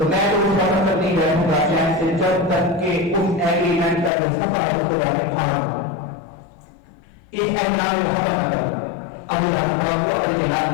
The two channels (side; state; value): right; drops out; at 4.1 s